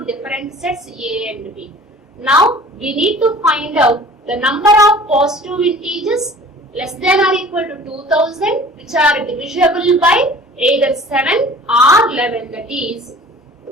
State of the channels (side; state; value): both; normal; correlation 0.46